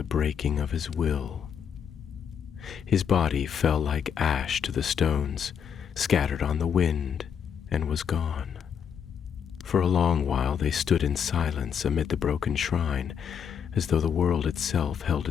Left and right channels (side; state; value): right; quieter; 7.7 dB